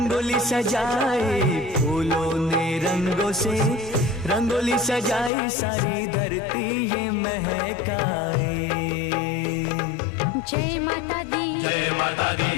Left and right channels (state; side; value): drops out; right; at 5.3 s